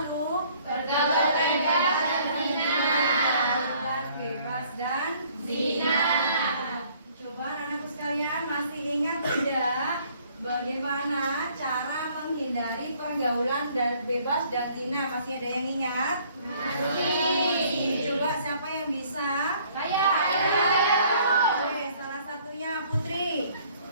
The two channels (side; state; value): both; inverted; correlation -0.60